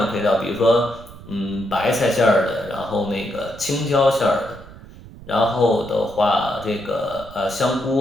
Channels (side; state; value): right; noise; rumble, 18 dB below the sound